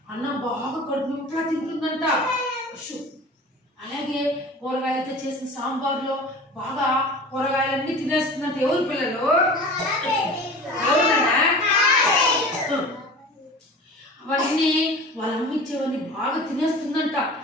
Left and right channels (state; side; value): normal; both; correlation 0.38